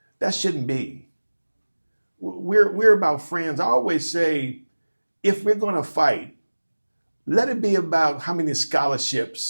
That shouldn't be. We're about friends. I always say, if we're going to fight, let it be about how many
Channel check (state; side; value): inverted; both; correlation -1.00